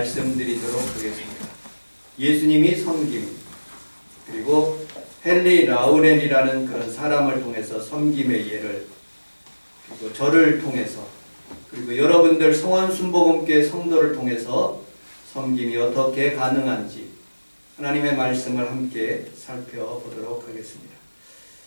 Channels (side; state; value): both; inverted; correlation -1.00